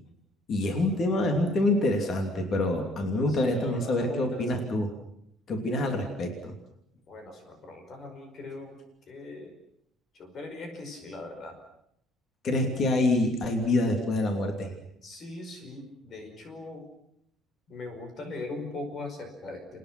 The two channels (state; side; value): normal; both; correlation 0.60